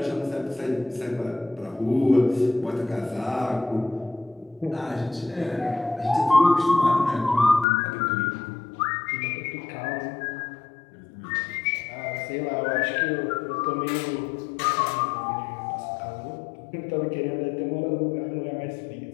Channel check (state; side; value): drops out; right; at 7.7 s